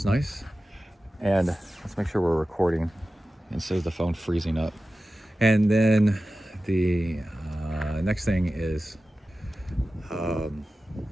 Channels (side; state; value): both; normal; correlation 0.95